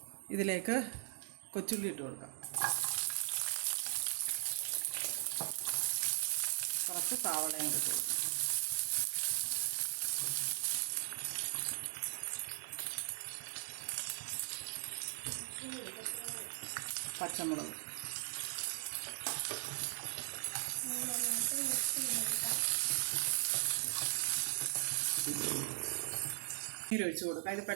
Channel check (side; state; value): left; silent; 52 dB below the other